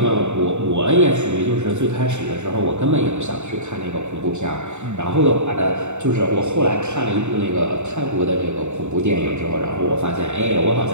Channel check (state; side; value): late; left; 0.83 ms